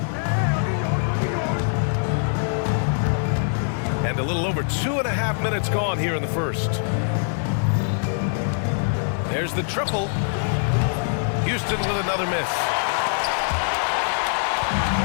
And a little over 2.5 minutes gone here in the first. There's the triple. Houston with another miss.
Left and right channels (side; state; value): right; silent; 63 dB below the other